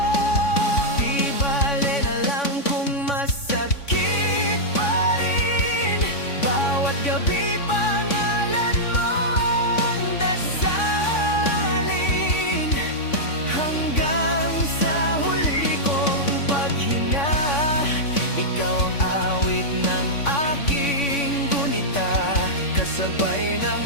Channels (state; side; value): late; right; 3.5 ms